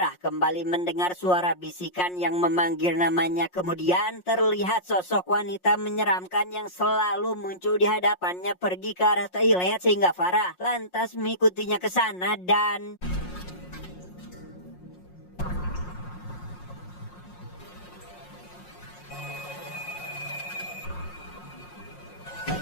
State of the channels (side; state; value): right; late; 5.5 ms